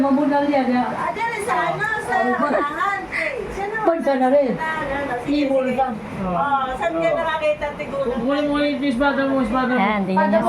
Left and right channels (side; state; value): both; identical; correlation 1.00